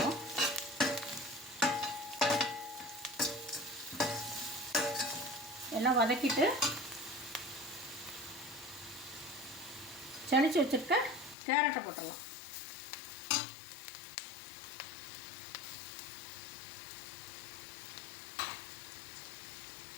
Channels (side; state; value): right; drops out; at 11.4 s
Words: எல்லாம் வதக்கிட்டு சளிச்சு வச்சுருக்க கேரட்டை போட்டுடலாம்.